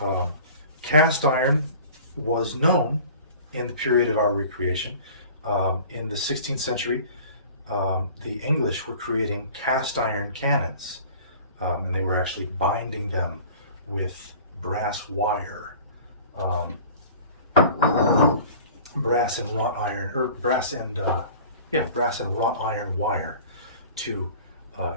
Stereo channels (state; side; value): inverted; both; correlation -0.44